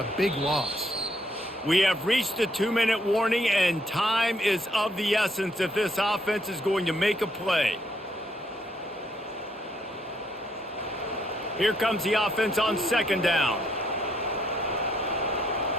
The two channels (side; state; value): both; normal; correlation 0.71